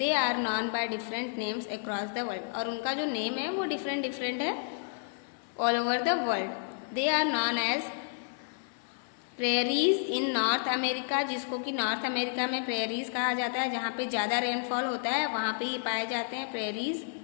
are known by different names across the world, और उनका जो नेम है वो डिफरेंट डिफरेंट है all over the world. They are known as prairies in North America, जिसको कि नॉर्थ अमेरिका में प्रेरीज कहा जाता है, जहाँ पे ज़्यादा रेनफॉल होता है वहाँ पे ये पाए जाते हैं prairies.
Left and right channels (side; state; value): right; silent; digital silence